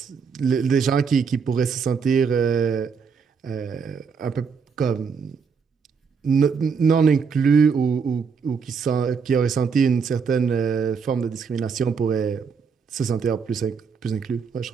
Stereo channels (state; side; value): quieter; left; 5.8 dB